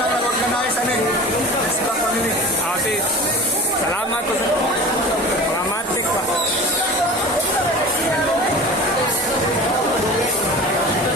na organize namin. Xbox family. Sis, salamat po sa mga matik pa.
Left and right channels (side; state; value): both; normal; correlation 0.37